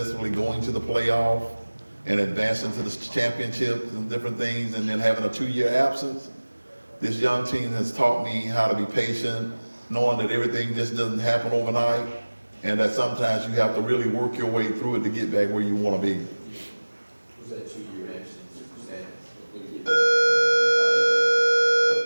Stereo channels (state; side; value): inverted; both; correlation -1.00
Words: going to the playoff and advancing to the championships and different things, and then having a 2-year absence, this young team has taught me how to be patient, knowing that everything just doesn't happen overnight, and that sometimes you have to really work your way through it to get back where you want to be. Was that 2-year absence? Was that did